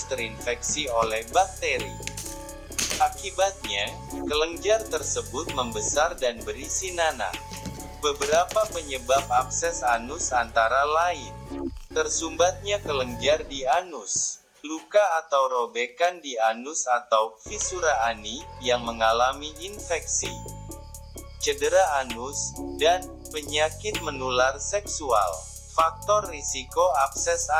terinfeksi oleh bakteri. Akibatnya, kelenjar tersebut membesar dan berisi nanah. Beberapa penyebab abses anus antara lain: tersumbatnya kelenjar di anus, luka atau robekan di anus atau fisura ani yang mengalami infeksi, cedera anus, dan penyakit menular seksual. Faktor risiko abses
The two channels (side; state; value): both; identical; correlation 1.00